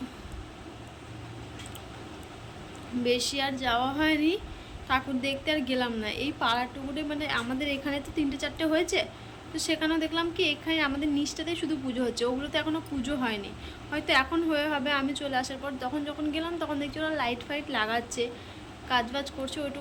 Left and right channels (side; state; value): both; identical; correlation 1.00